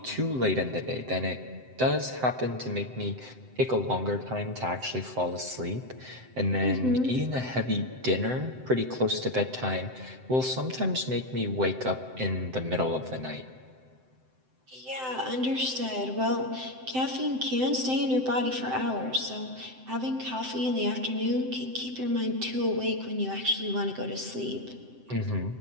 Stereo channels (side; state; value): left; late; 7.8 ms